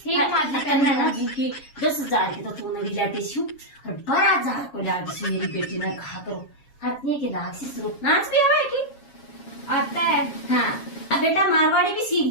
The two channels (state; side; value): late; right; 7.2 ms